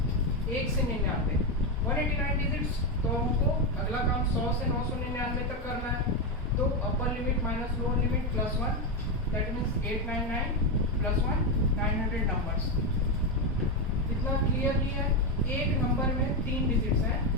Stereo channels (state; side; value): normal; both; correlation 0.09